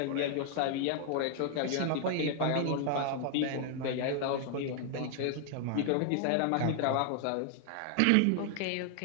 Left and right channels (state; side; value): different; both; correlation 0.00